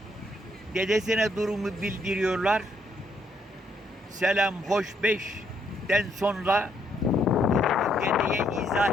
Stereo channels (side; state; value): both; normal; correlation 0.72